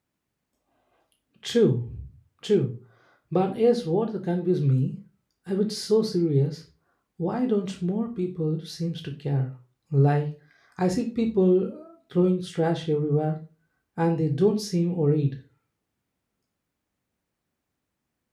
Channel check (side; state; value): both; identical; correlation 1.00